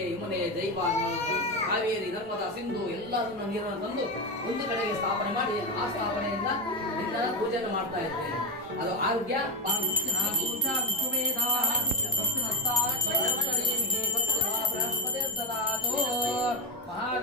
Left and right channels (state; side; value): normal; both; correlation 0.14